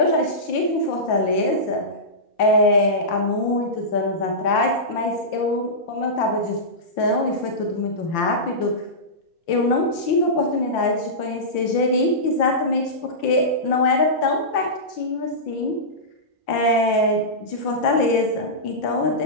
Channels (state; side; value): late; right; 5.7 ms